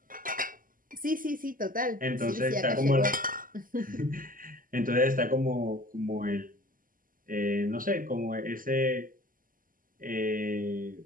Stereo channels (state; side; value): late; left; 0.41 ms